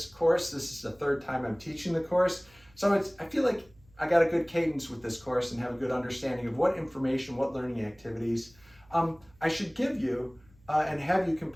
course. This is the third time I'm teaching the course. So I feel like I got a good cadence with this course and have a good understanding of what information, what learning activities I should give you and have you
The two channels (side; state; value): right; noise; hum, 29 dB below the sound